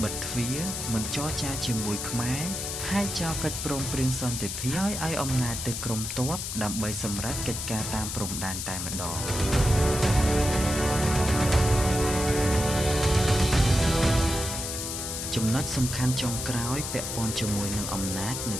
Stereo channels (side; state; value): left; noise; hiss, 5 dB below the sound